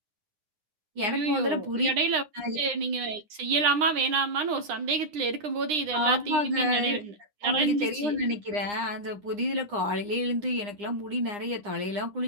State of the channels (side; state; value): left; late; 9.8 ms